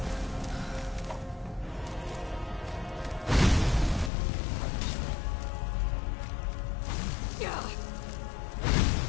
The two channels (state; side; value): drops out; right; at 4.1 s